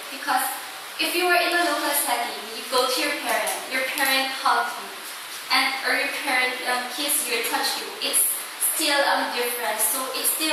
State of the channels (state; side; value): identical; both; correlation 1.00